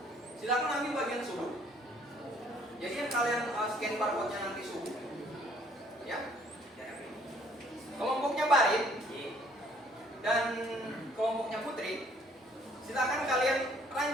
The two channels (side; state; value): both; normal; correlation 0.61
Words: Silakan ambil bagian suhu. Jadi yang kalian scan barcode-nya nanti suhu, ya. Kelompoknya Barit dan kelompoknya Putri, silakan kalian